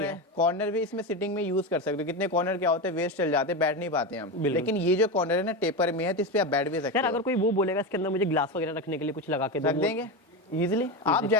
है। कॉर्नर भी इसमें सिटिंग में यूज कर सकते हो। कितने कॉर्नर क्या होते हैं, वेस्ट चल जाते हैं, बैठ नहीं पाते हम। लेकिन ये जो कॉर्नर है ना टेपर में है, तो इस पे आप बैठ भी सकते यार हो। अगर कोई वो बोलेगा इसके अंदर मुझे ग्लास वगैरह रखने के लिए कुछ लगा के दो, रख देंगे इजीली। आप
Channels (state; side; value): normal; both; correlation 0.18